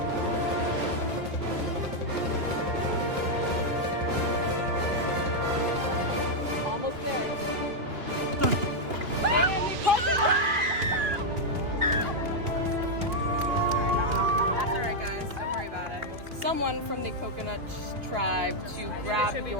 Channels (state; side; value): late; left; 2.9 ms